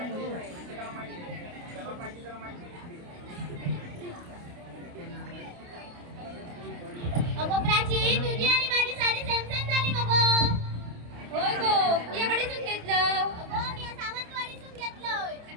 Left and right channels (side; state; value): left; late; 28 ms